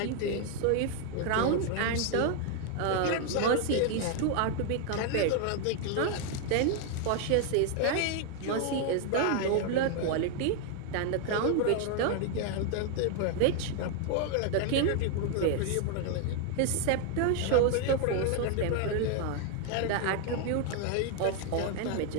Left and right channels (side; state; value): both; different; correlation 0.00